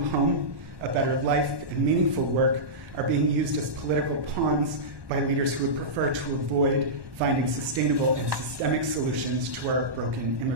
home, a better life, and meaningful work are being used as political pawns by leaders who would prefer to avoid finding sustainable and systemic solutions to our broken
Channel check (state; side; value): late; left; 1.1 ms